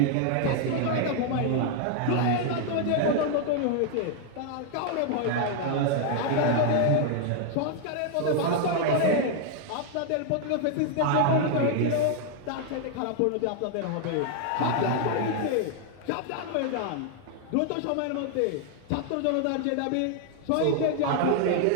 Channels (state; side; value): different; both; correlation 0.00